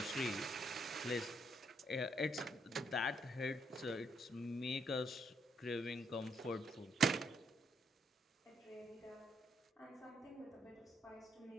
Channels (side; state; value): both; normal; correlation 0.74